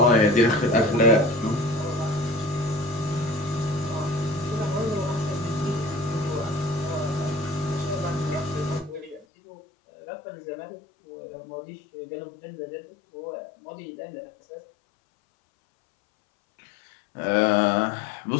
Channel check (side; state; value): right; drops out; at 9.2 s